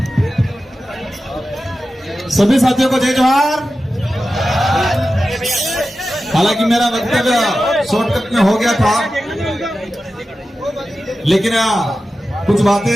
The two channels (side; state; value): both; normal; correlation 0.93